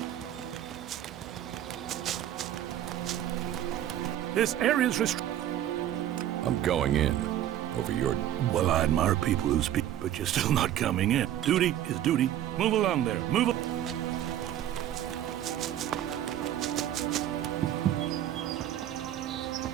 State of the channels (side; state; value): left; quieter; 11.8 dB